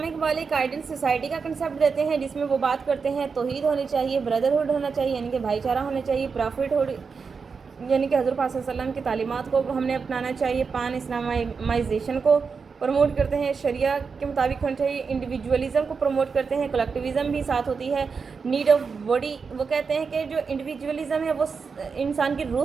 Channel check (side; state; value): left; quieter; 5.3 dB